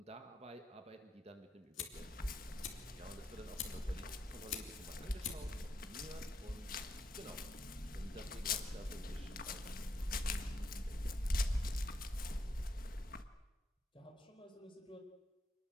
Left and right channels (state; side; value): normal; both; correlation 0.81